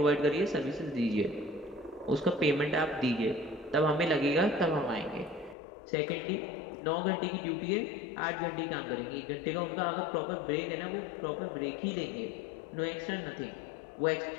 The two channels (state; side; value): drops out; right; at 5.6 s